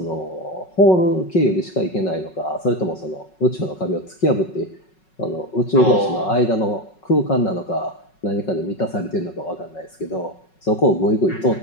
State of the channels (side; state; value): right; late; 5.4 ms